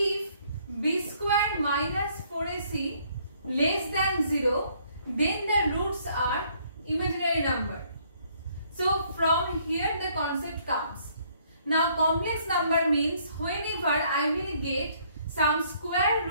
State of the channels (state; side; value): inverted; both; correlation -0.65